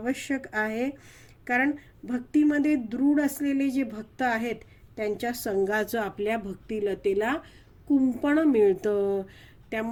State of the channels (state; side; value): identical; both; correlation 1.00